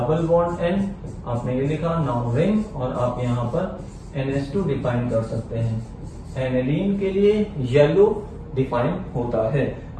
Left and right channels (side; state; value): both; identical; correlation 1.00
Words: bond N, आपने ये लिखा नाउन रिंग, और आप यहाँ पर NH2 डिफाइन कर सकते हैं। एनिलीन के लिए येलो डिफाइन होता है।